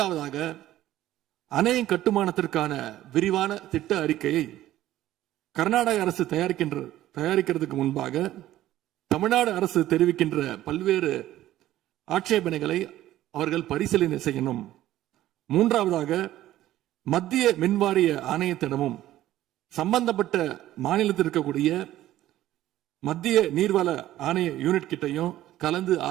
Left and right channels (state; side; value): quieter; left; 14.1 dB